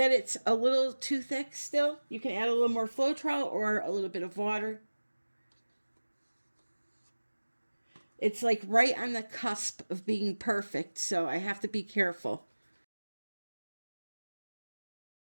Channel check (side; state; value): both; inverted; correlation -1.00